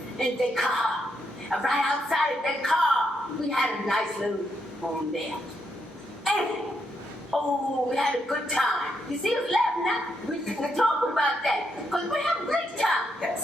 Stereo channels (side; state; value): both; normal; correlation 0.79